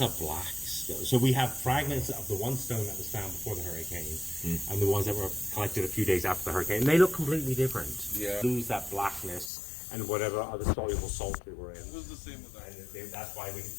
a black stone. So we have fragments of the one stone that was found before the hurricane and the ones that were collected a few days after the hurricane. And they look completely different. Yeah. Lose that blackness and whatever other soluble salts they were in. It was the same with that. And that's why we get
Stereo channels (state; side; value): drops out; right; at 9.5 s